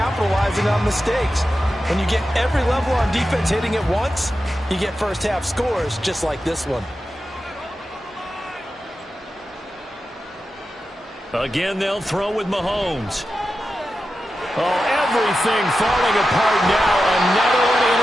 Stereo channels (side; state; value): both; normal; correlation 0.91